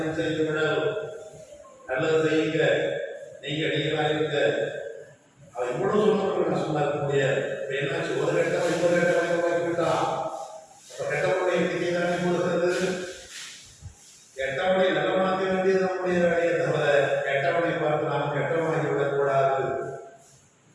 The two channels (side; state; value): both; identical; correlation 1.00